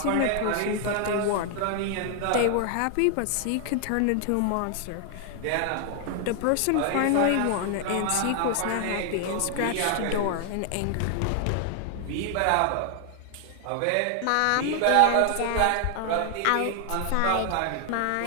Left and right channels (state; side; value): different; both; correlation 0.00